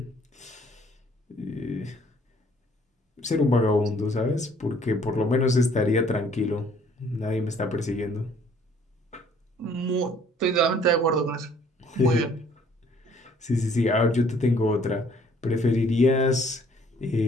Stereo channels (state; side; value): normal; both; correlation 0.59